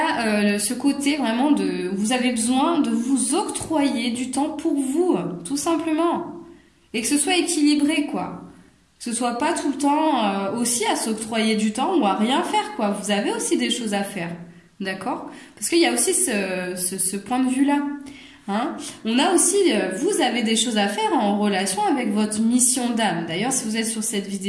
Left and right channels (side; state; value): both; identical; correlation 1.00